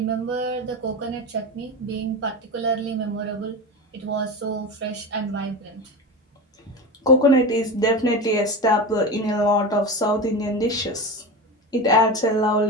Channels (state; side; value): normal; both; correlation 0.25